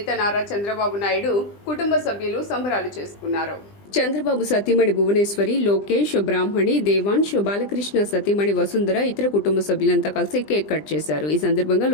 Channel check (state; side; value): late; right; 20 ms